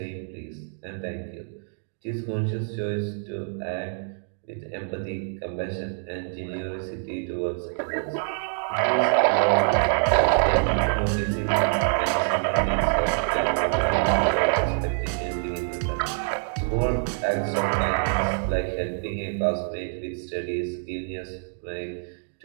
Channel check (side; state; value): left; silent; digital silence